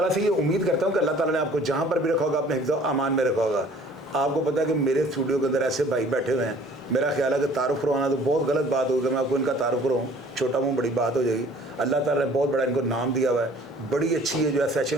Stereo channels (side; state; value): both; normal; correlation 0.52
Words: से ये उम्मीद करता हूँ कि अल्लाह ताला ने आपको जहाँ पर भी रखा होगा अपने हिफ्ज़ अमान में रखा होगा। आपको पता है कि मेरे स्टूडियो के अंदर ऐसे भाई बैठे हुए हैं, मेरा ख्याल है कि तारुफ़ करवाना तो बहुत गलत बात होगी, मैं आपको इनका तारुफ़ करवाऊँ, छोटा मुँह बड़ी बात हो जाएगी। अल्लाह ताला ने बहुत बड़ा इनको नाम दिया हुआ है, बड़ी अच्छी है जो है